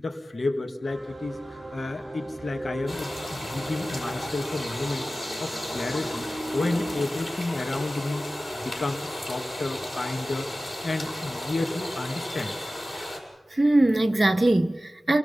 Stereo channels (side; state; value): both; normal; correlation 0.96